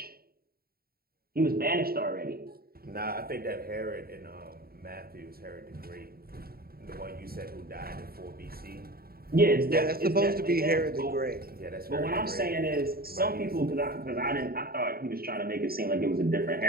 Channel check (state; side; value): late; left; 0.44 ms